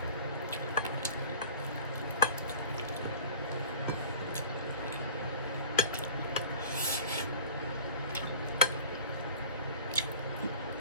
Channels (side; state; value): both; inverted; correlation -0.42